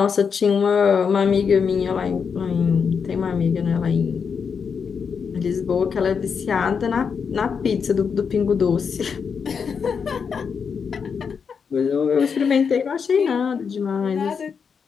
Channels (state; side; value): quieter; right; 6.2 dB